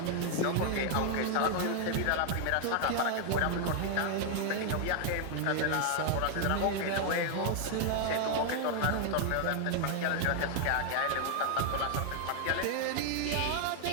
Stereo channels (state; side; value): different; both; correlation 0.00